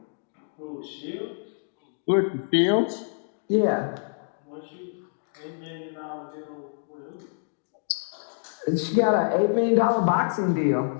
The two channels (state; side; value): silent; right; digital silence